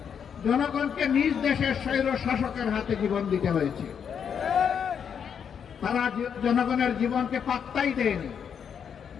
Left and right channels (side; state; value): right; quieter; 7.5 dB